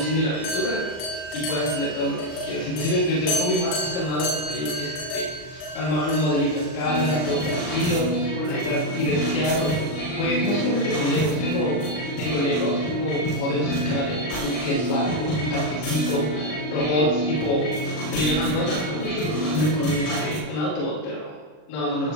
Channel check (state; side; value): late; right; 39 ms